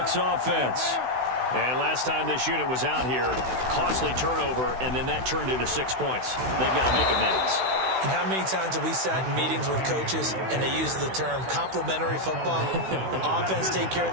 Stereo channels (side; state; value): left; late; 16 ms